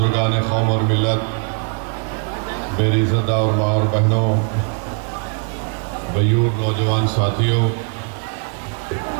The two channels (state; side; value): quieter; left; 37.2 dB